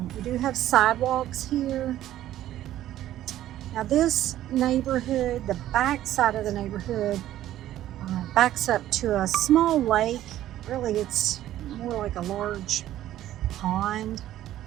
We do have sidewalks here. Now this neighborhood, the back side of the neighborhood backs up to a small lake. Really, it's more like a large pond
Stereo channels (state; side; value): quieter; left; 13.2 dB